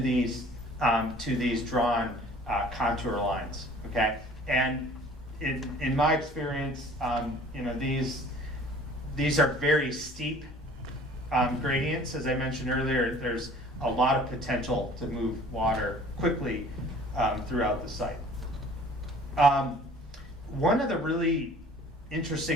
drawn contour lines. Okay, and in my experience, you know, these are very steep gradients. As I mentioned earlier, there's a lot of potential to move water quickly throughout the site. One of the really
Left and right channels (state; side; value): normal; both; correlation 0.50